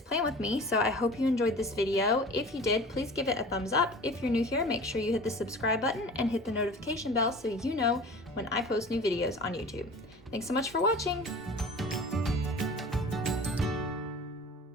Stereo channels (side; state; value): both; normal; correlation 0.40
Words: plan with me. So I hope you enjoyed this video. If you did, please give it a thumbs up. If you're new here, make sure you hit the subscribe button and hit the notification bell so you know when I post new videos on YouTube. Thanks so much for watching.